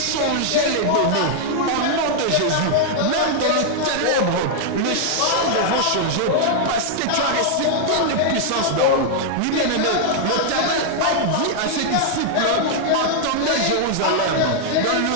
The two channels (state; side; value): different; both; correlation 0.00